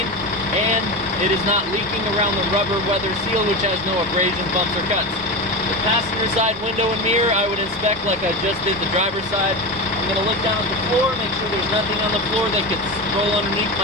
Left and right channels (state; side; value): normal; both; correlation 0.21